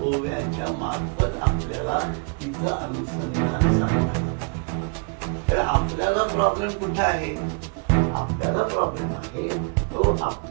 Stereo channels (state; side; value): quieter; left; 36.7 dB